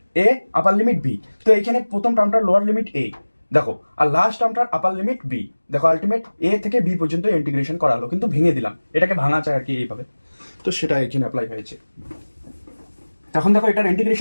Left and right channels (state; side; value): inverted; both; correlation -1.00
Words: a, upper limit b। তো এখানে প্রথম টার্মটার লোয়ার লিমিট a দেখো, আর লাস্ট টার্মটার আপার লিমিট b দেখো। আলটিমেট a থেকে b পর্যন্ত ইন্টিগ্রেশন করা হলো, কিন্তু ভেঙে দিলাম, এটাকে ভাঙা চাই আর কি এইভাবে। তো সেটা এখানে অ্যাপ্লাই হয়েছে। এখন দেখো এটার